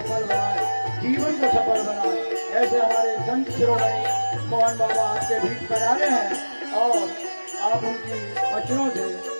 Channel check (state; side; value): inverted; both; correlation -1.00